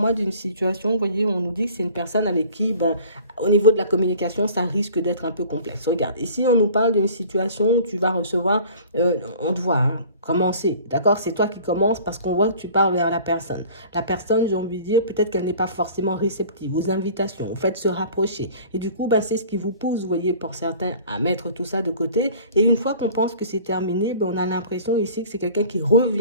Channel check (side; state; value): both; inverted; correlation -0.47